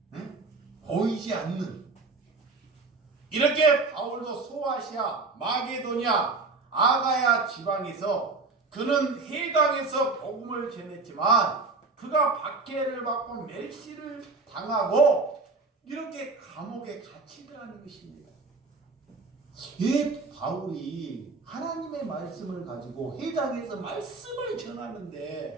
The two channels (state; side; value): quieter; left; 3.9 dB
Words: 응? 보이지 않는. 이렇게 바울도 소아시아, 마게도냐, 아가야 지방에서 그는 해당에서 복음을 전했지만 그가 박해를 받고 멸시를 당하고 이렇게 감옥에 갇히더라는 것입니다. 이 바울이 하나님의 말씀을 가지고 해당에서 말씀을